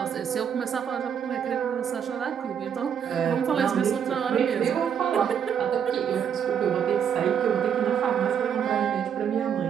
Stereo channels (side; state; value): left; quieter; 8.1 dB